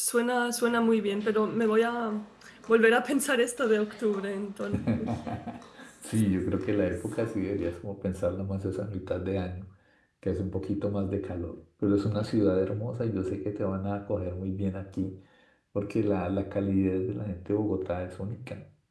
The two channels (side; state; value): both; identical; correlation 1.00